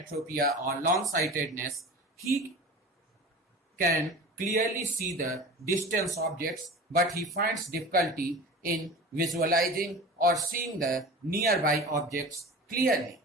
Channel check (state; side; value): normal; both; correlation 0.36